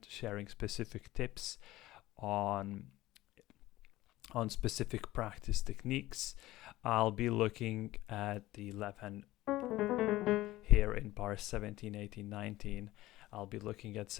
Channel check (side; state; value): right; quieter; 16.8 dB